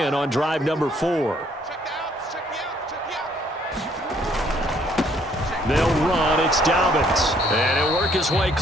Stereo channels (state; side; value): normal; both; correlation 0.64